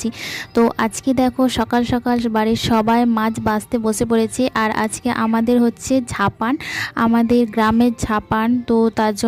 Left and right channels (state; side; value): identical; both; correlation 1.00